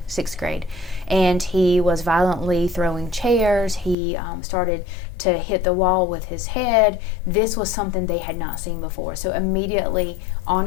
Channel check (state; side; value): drops out; right; at 4.0 s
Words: 6th grade, and he was violently throwing chairs. He started to hit the wall with his head. This was something they had not seen before. So immediately